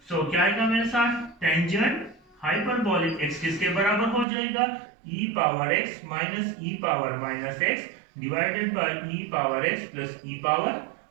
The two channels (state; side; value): drops out; left; at 4.2 s